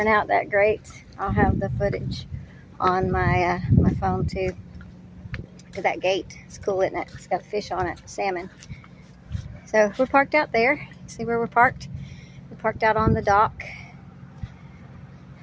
out that great. I'll have the footage on my my phone too. Look at that gate, it's cool, isn't it? It's got a fish on it, salmon. So we're parked out there. See where we're parked? We're parked out on the dock.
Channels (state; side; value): identical; both; correlation 1.00